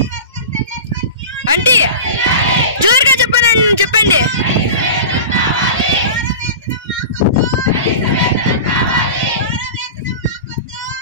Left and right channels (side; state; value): both; inverted; correlation -0.31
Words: అంటే జోరుగా చెప్పండి.